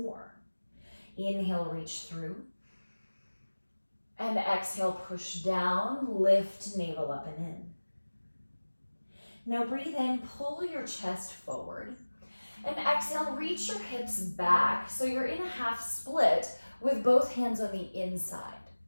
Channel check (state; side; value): inverted; both; correlation -1.00